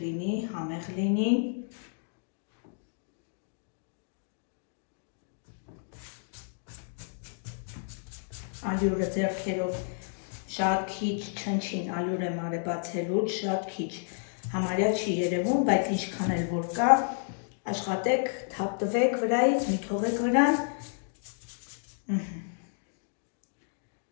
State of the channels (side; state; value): right; silent; digital silence